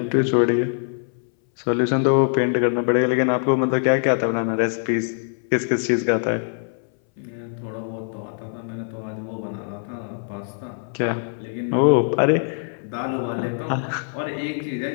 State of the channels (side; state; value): right; silent; 62 dB below the other